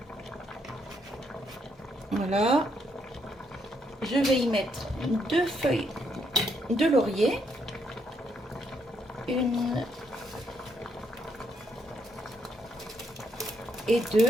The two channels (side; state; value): both; normal; correlation 0.75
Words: Voilà. Je vais y mettre 2 feuilles de laurier. Une et